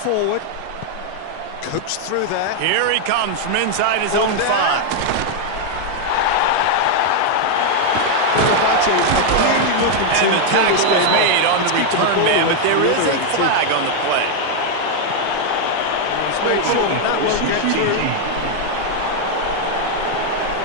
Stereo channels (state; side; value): different; both; correlation 0.00